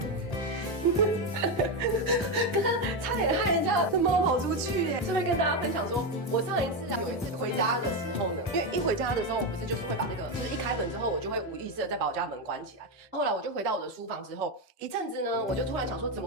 刚刚差点害人家的猫跑出去耶！顺便跟大家分享说，我上一次有一次回家的时候呢，因为一回家的时候，我不是就是会把那个，就是一开门之后，我就会无意识的再把我家门关起来。后来我就回到我的书房之后，一阵子呢，我就突然想说，怎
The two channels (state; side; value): normal; both; correlation 0.10